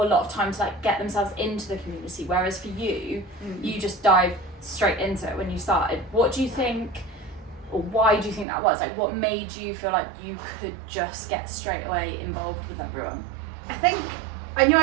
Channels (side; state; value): left; drops out; at 8.5 s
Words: a lot of time to like get themselves into the community, whereas for you, you just dive straight into it when you started. What do you think, or why do you think that was? Like, what made you feel like you could just get straight away involved with everyone? I think I knew